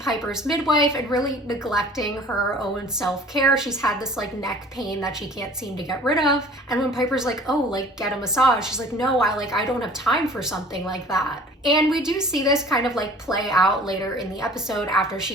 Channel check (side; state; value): both; normal; correlation 0.48